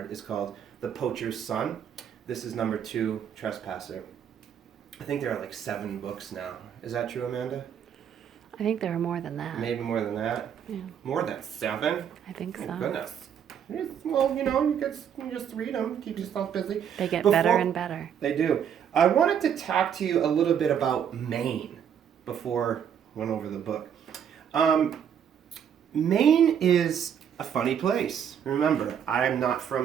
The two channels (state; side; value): quieter; left; 8.5 dB